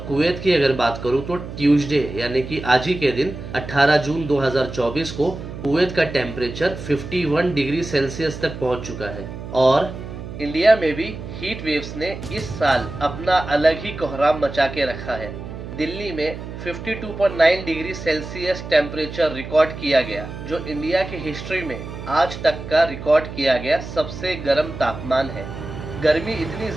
Kuwait की अगर बात करूं तो Tuesday यानी कि आज ही के दिन 18 जून 2024 को कुवैत का टेम्परेचर 51 डिग्री सेल्सियस तक पहुंच चुका है। और इंडिया में भी हीट वेव्स ने इस साल अपना अलग ही कोहराम मचा के रखा है। दिल्ली में 52.9 डिग्री सेल्सियस टेम्परेचर रिकॉर्ड किया गया, जो इंडिया की हिस्ट्री में आज तक का रिकॉर्ड किया गया सबसे गर्म तापमान है। गर्मी इतनी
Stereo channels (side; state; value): right; noise; hum, 10 dB below the sound